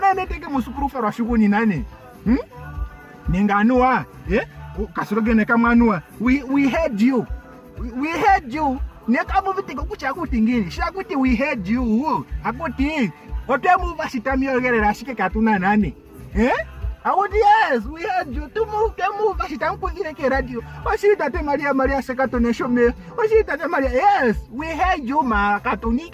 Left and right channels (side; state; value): both; identical; correlation 1.00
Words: neteke musukuru fa rasho kunyi nane ninganua kasirogene kamwanua we heard you nekabu vitiko kucha kutingini shakuti we heard you akuti otemu vasitamiyogerera shike katuna nane akuti yes we heard you temu vasitamkuzire ke radio wasitate maria sekatone shome wasitate maria yes we heard you ma